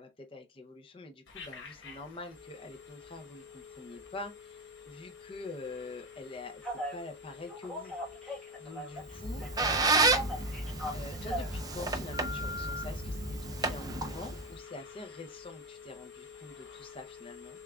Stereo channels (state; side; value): normal; both; correlation 0.15